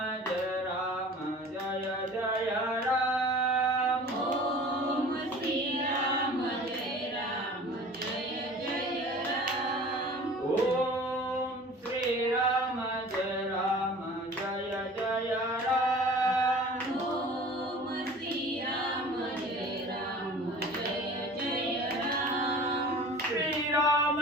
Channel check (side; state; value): both; normal; correlation 0.43